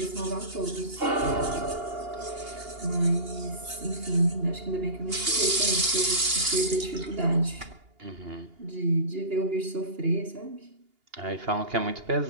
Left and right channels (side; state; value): left; late; 2.8 ms